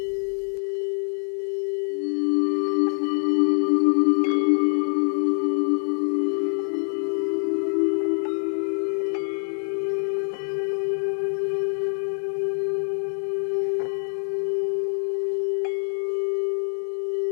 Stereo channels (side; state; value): right; silent; 62 dB below the other